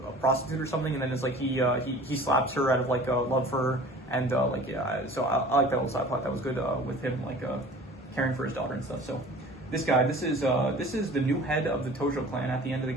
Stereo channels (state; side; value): normal; both; correlation 0.44